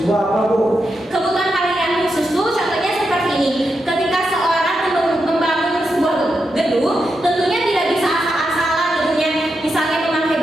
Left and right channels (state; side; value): normal; both; correlation 0.86